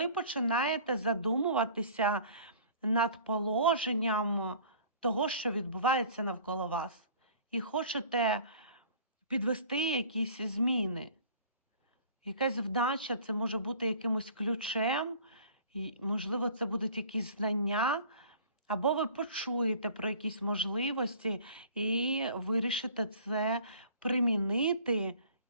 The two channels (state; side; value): inverted; both; correlation -0.48